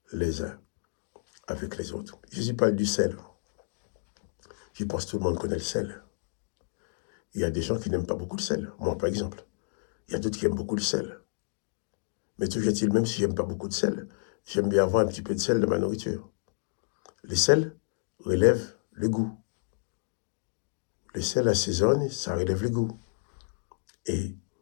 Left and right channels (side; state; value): right; silent; digital silence